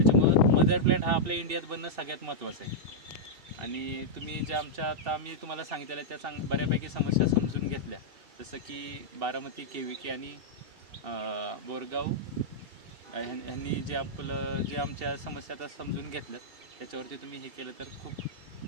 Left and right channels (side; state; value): left; late; 2.7 ms